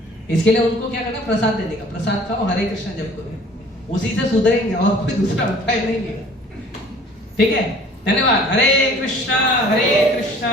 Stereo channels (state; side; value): normal; both; correlation 0.51